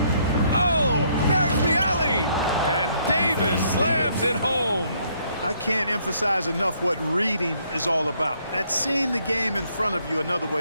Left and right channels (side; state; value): both; inverted; correlation -0.68